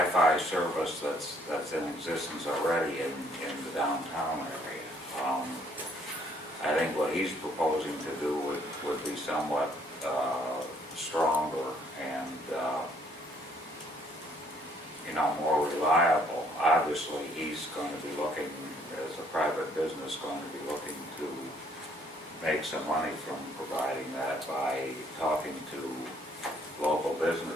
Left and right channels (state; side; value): normal; both; correlation 0.65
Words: service service that's in existence already in the downtown area. I think what he's proposing to do would be somewhat stronger and, more reliable. Obviously, he's going to be looking, as a private business, going to be looking to make some money from providing that by talking to local